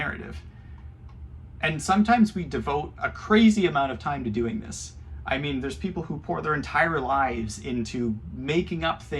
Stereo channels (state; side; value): identical; both; correlation 1.00